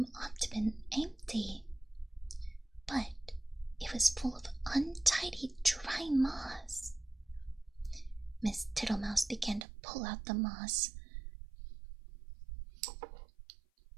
ought to have been empty, but it was full of untidy dry moss. Miss Tittlemouse began to pull out the moss.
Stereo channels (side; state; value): left; drops out; at 9.7 s